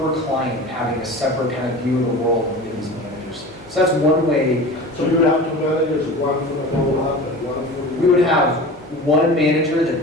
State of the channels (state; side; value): normal; both; correlation 0.35